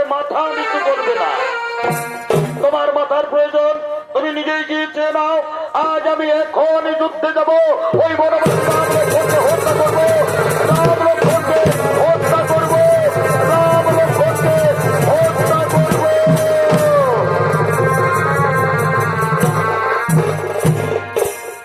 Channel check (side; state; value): both; identical; correlation 1.00